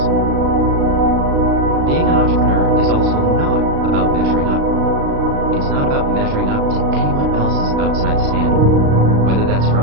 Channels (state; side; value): late; left; 36 ms